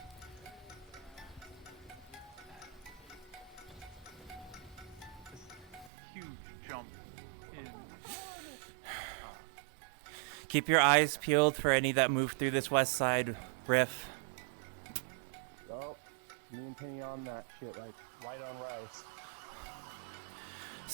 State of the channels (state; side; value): drops out; left; at 5.9 s